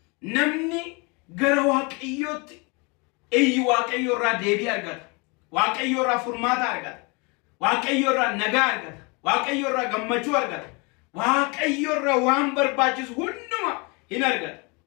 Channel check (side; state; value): right; quieter; 29.7 dB